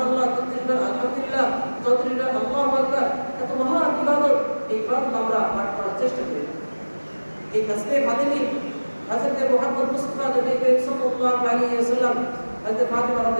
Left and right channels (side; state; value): both; inverted; correlation -1.00